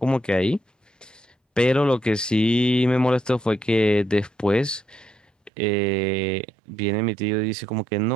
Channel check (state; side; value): drops out; left; at 5.5 s